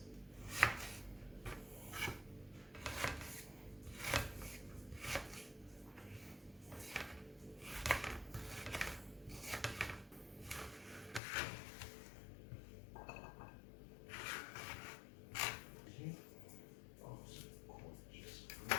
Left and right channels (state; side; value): drops out; right; at 11.2 s